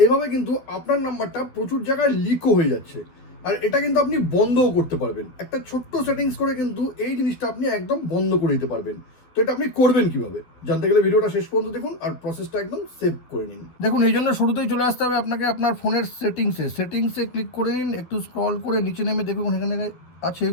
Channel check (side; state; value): right; late; 12 ms